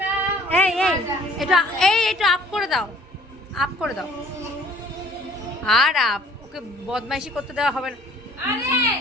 এই এই এটা এটা আপ করে দাও, আপ করে দাও। আর আপ, ওকে বদমাইশি করতে দেওয়া হবে না।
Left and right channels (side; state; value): both; normal; correlation 0.56